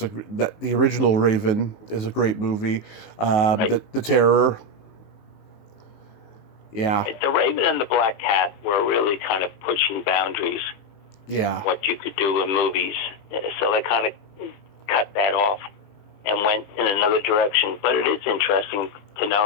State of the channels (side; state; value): right; late; 19 ms